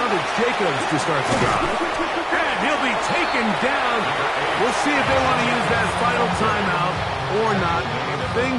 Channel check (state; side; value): identical; both; correlation 1.00